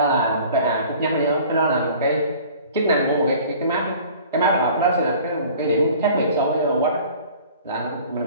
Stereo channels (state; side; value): inverted; both; correlation -0.47